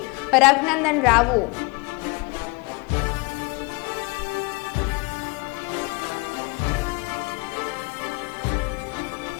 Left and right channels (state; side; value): quieter; right; 27.9 dB